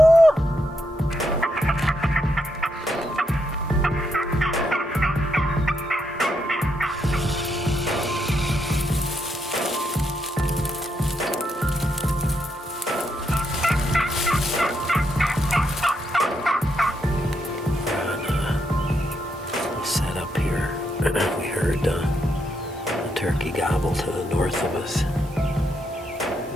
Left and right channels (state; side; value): normal; both; correlation 0.79